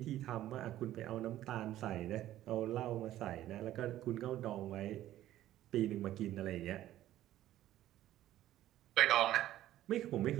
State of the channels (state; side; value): quieter; left; 13.6 dB